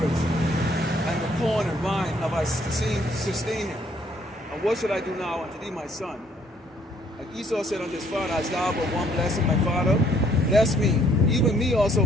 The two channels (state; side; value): normal; both; correlation 0.65